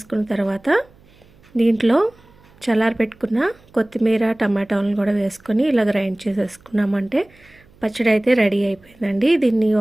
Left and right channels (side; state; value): right; noise; hum, 29 dB below the sound